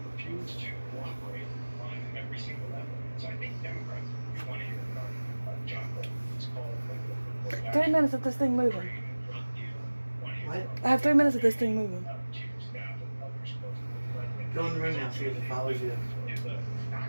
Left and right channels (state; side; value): inverted; both; correlation -1.00